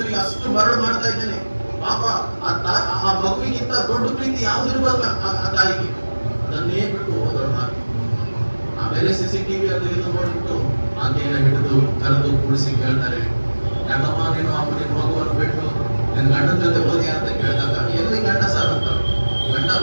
ನಿಮಗೆ, ಅಷ್ಟು ಮರಳು ಮಾಡ್ತಾ ಇದ್ದೇನೆ. ಪಾಪ ಆ ಮಗುವಿಗಿಂತ ದೊಡ್ಡ ಪ್ರೀತಿ ಯಾವ್ದು ಇರ್ಬೇಕು ಆ ತಾಯಿಗೆ, ಅದನ್ನೇ ಬಿಟ್ಟು ಹೋದಳು ಹಾಕಿ. ಆಮೇಲೆ CCTV ಅದು ಇದು ನೋಡ್ಬಿಟ್ಟು ಆಕೆಯನ್ನು ಹಿಡಿದು ಕರೆದು ಕೂಡಿಸಿ ಕೇಳ್ತಾರೆ, ಯಾಕಮ್ಮ ನೀನು ನಿನ್ನ ಮಗುವನ್ನು ಬಿಟ್ಟು ನಿನ್ನ ಗಂಡನ ಜೊತೆ ಹೋದಿ ಅಂತ ಕೇಳಿದಾಗ, ಎಲ್ಲಿ ಗಂಡ ಸರ್ ಅಂತ. ಗಂಡ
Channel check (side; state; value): both; inverted; correlation -1.00